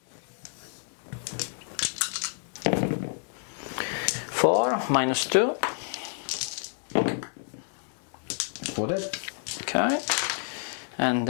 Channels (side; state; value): right; silent; 59 dB below the other